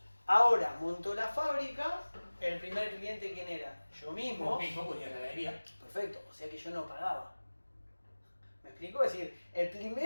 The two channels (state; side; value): inverted; both; correlation -1.00